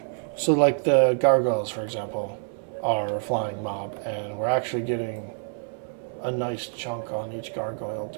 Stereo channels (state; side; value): silent; left; 60 dB below the other